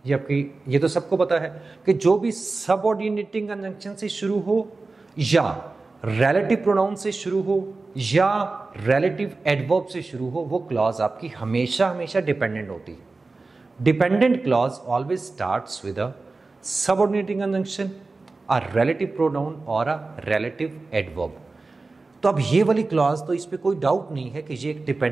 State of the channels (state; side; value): quieter; left; 3.7 dB